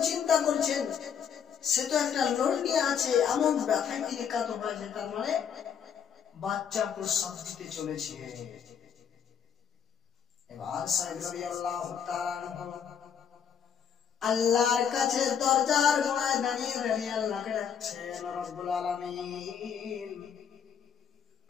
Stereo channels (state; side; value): quieter; right; 7.7 dB